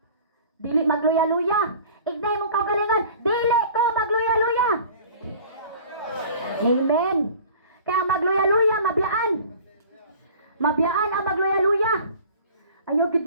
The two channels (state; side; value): inverted; both; correlation -0.45